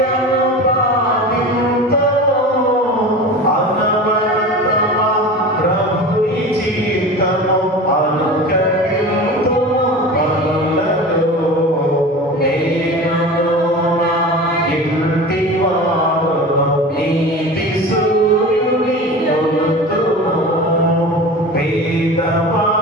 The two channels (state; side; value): normal; both; correlation 0.33